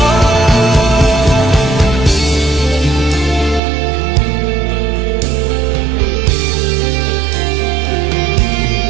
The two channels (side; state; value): left; drops out; at 3.6 s